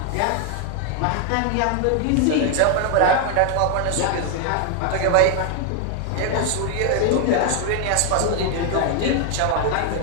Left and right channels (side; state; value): both; different; correlation 0.00